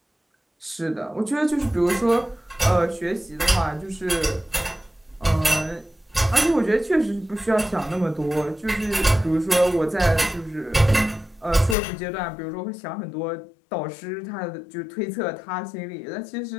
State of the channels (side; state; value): right; drops out; at 11.8 s